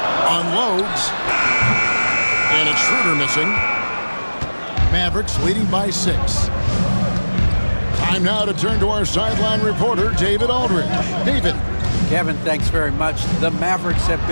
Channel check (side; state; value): both; inverted; correlation -1.00